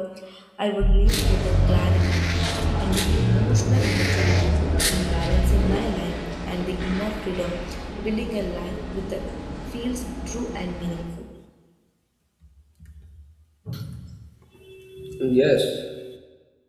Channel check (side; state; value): both; identical; correlation 1.00